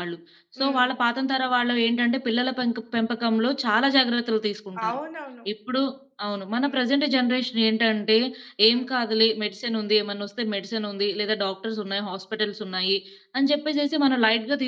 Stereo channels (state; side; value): identical; both; correlation 1.00